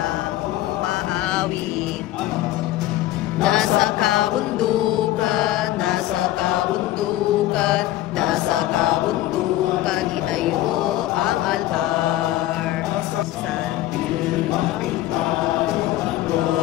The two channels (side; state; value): right; quieter; 14.9 dB